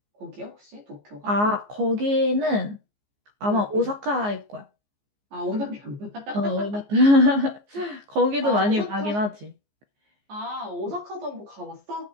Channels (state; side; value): late; left; 14 ms